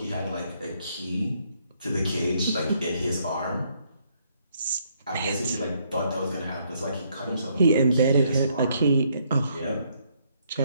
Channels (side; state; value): both; inverted; correlation -0.71